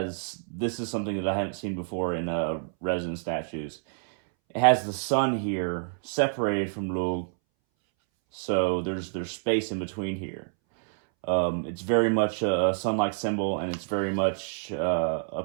is something that I haven't seen before in resin statues. It has the sun here separated from Lugh, so there's space in between here. It's very much a sun-like symbol, and it's very much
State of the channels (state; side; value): silent; left; 60 dB below the other